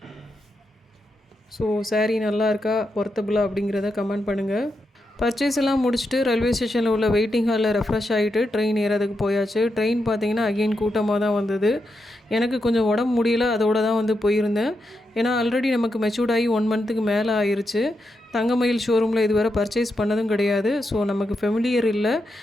ஸோ சாரீ நல்லா இருக்கா, ஒர்த்தபுளாக அப்படிங்கிறத கமெண்ட் பண்ணுங்கள். பர்ச்சேஸ் எல்லாம் முடிச்சுட்டு ரயில்வே ஸ்டேஷனில் உள்ள வெயிட்டிங் ஹாலில் ரெஃப்ரெஷ் ஆகிட்டு ட்ரெயின் ஏறதுக்கு போயாச்சு. ட்ரெயின் பார்த்திங்கன்னா அகெயின் கூட்டமாக தான் வந்தது. எனக்கு கொஞ்சம் உடம்பு முடியல, அதோடு தான் வந்து போயிருந்தேன். ஏன்னா ஆல்ரெடி நமக்கு மெச்சூர்ட் ஆகி 1 மந்த்துக்கு மேலே ஆயிடுச்சு. தங்கமயில் ஷோரூமில் இதுவரை பர்ச்சேஸ் பண்ணதும் கிடையாது. ஸோ நமக்கு ஃபெமிலியர் இல்லை.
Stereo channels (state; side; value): normal; both; correlation 0.85